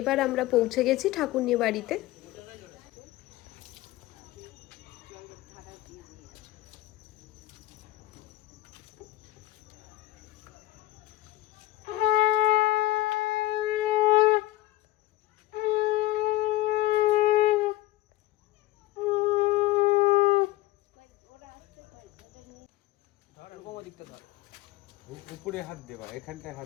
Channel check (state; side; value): quieter; right; 16.7 dB